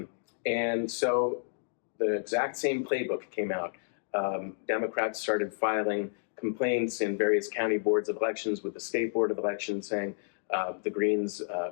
And so the exact same playbook came out. Democrats started filing complaints in various county boards of elections with the state board of elections saying the Greens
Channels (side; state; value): right; silent; digital silence